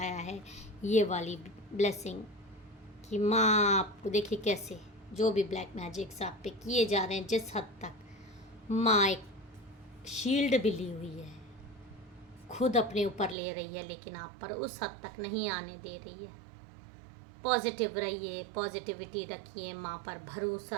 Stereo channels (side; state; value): left; drops out; at 13.4 s